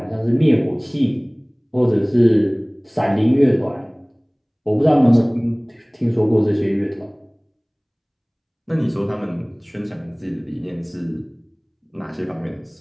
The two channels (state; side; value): identical; both; correlation 1.00